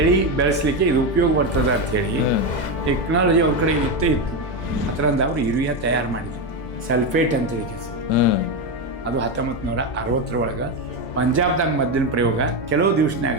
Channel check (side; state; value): right; late; 2.0 ms